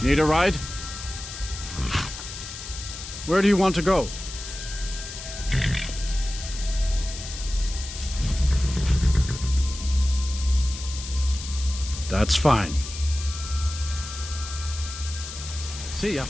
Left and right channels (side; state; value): left; noise; hiss, 10 dB below the sound